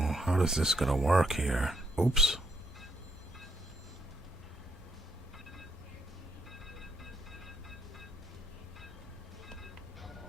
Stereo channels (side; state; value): both; normal; correlation 0.73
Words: is this gonna work here? Oops.